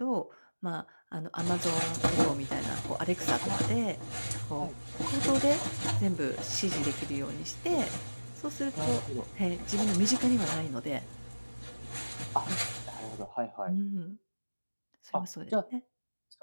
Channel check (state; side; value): inverted; both; correlation -1.00